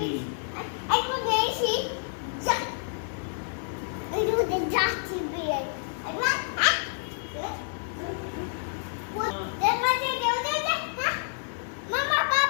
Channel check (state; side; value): silent; right; digital silence